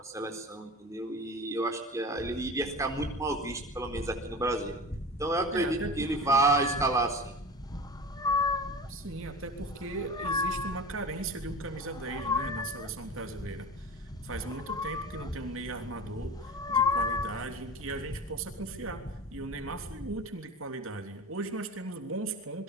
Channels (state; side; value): normal; both; correlation 0.33